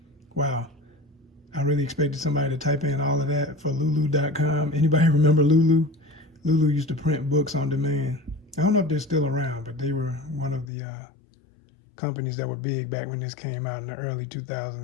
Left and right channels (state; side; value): drops out; right; at 10.7 s